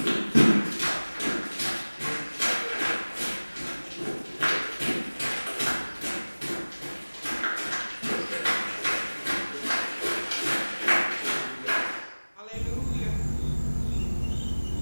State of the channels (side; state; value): both; inverted; correlation -1.00